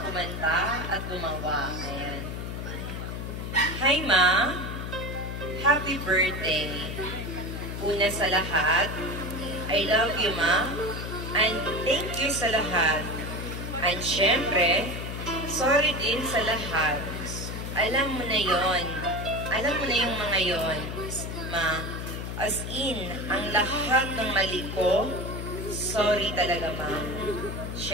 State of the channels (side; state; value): left; noise; hum, 6 dB below the sound